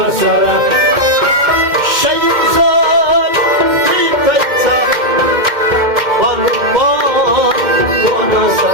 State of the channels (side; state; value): left; late; 2.1 ms